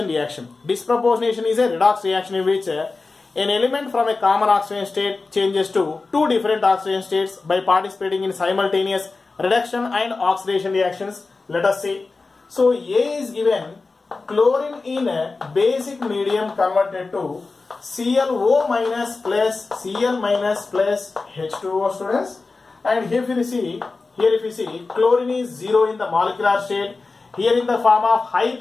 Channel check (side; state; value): right; quieter; 3.8 dB